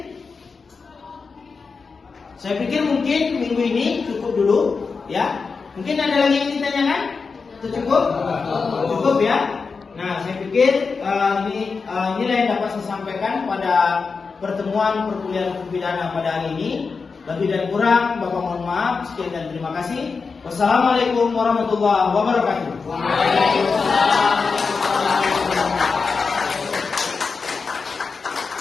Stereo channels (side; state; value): right; quieter; 4.8 dB